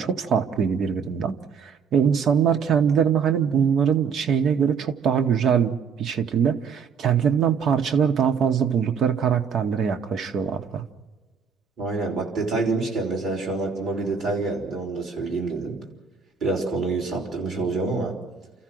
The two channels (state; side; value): quieter; left; 6.3 dB